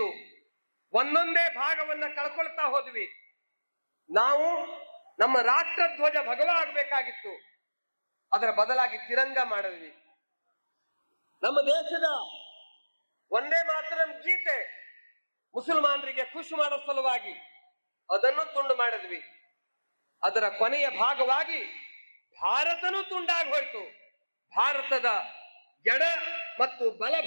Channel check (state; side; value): inverted; both; correlation -1.00